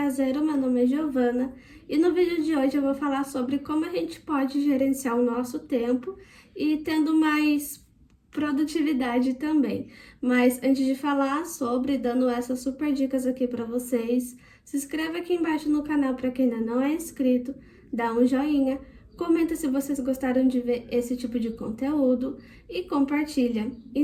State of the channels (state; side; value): identical; both; correlation 1.00